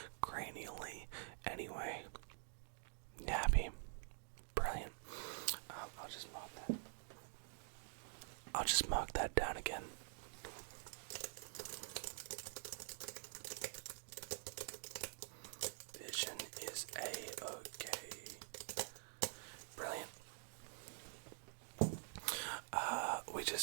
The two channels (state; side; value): silent; left; digital silence